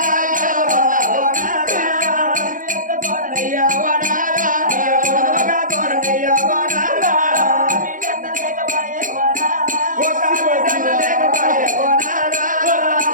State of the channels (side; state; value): left; late; 0.39 ms